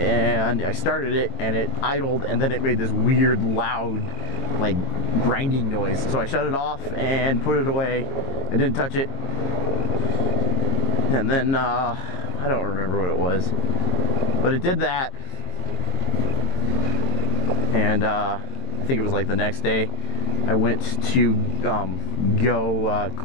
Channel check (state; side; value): late; right; 22 ms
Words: I started it, and it idled, and then it made this weird, loud, like, grinding noise. So I shut it off and put it away. I didn't touch it. And then, I don't remember what it was, but it did that. And I think it was like the next day, I went to go